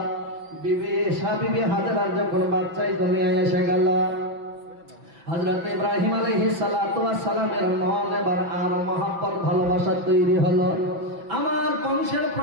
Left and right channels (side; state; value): left; late; 5.9 ms